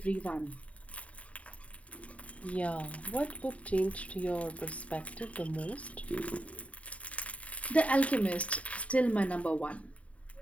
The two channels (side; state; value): right; late; 0.066 ms